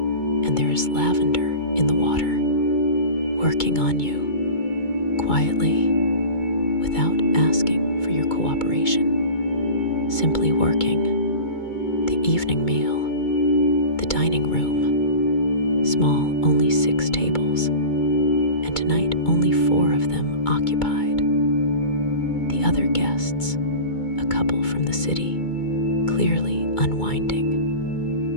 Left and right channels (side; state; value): right; late; 2.2 ms